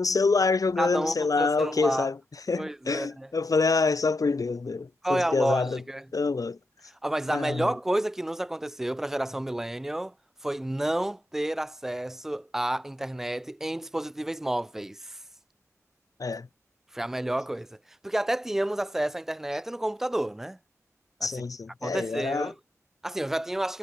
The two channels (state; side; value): normal; both; correlation 0.86